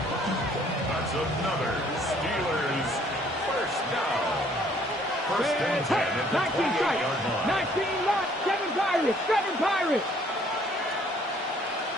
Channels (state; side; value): normal; both; correlation 0.61